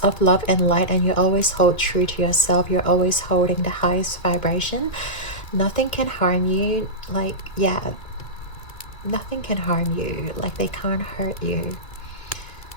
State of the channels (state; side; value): late; right; 2.3 ms